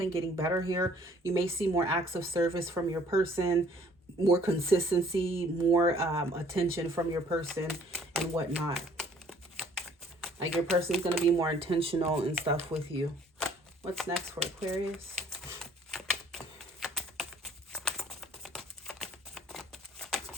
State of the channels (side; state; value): both; normal; correlation 0.58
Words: getting better here. You may see more acts of service from your person, more consistency, more attention from your person and whatnot. Like your person's going to be more intentional and stuff with you. What's next for Aquarius?